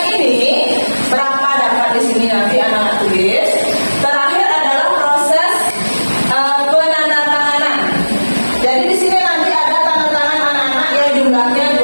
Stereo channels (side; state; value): both; inverted; correlation -1.00